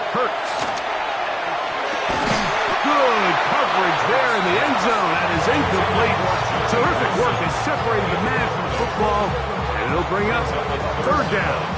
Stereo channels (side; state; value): both; identical; correlation 1.00